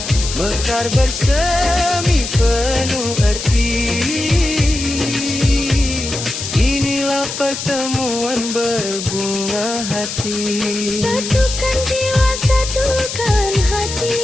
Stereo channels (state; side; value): noise; left; hiss, 6 dB below the sound